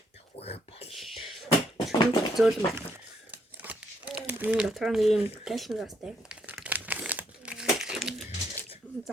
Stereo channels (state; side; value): normal; both; correlation 0.72